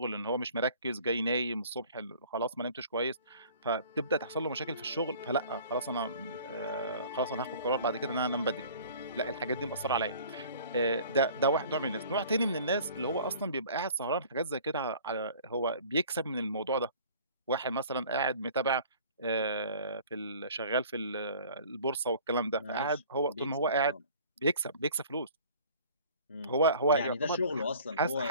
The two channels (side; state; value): both; inverted; correlation -0.48